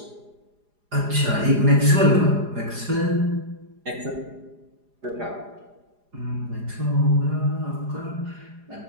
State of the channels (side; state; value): left; late; 4.9 ms